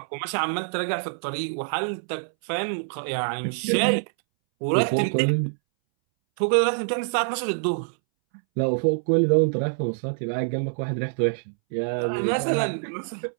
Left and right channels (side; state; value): left; silent; 61 dB below the other